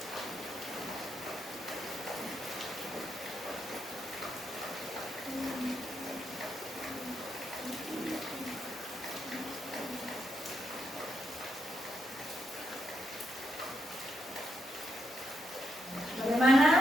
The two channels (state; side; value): normal; both; correlation 0.80